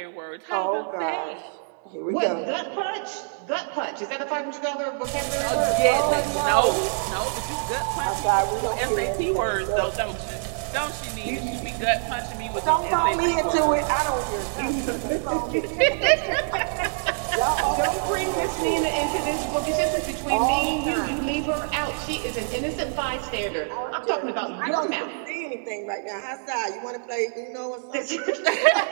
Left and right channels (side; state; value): left; silent; digital silence